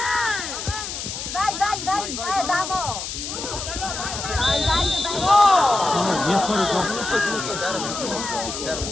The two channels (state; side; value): noise; left; hiss, 6 dB below the sound